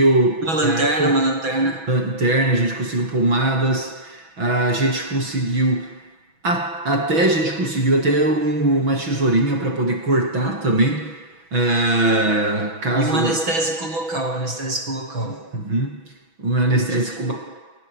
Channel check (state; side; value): late; left; 6.1 ms